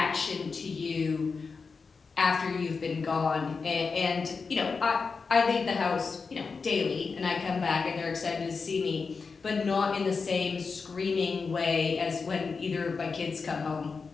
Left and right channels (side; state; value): right; quieter; 4.8 dB